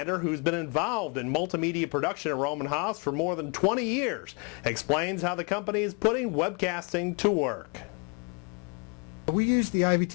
who's been involved in multimedia production at Rohm Haas for more than 20 years, explains how the company is putting webcasting to work. We use the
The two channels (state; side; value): quieter; right; 35.0 dB